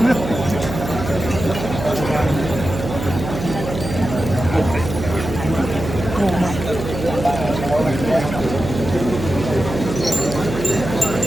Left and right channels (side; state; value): right; noise; hum, 7 dB below the sound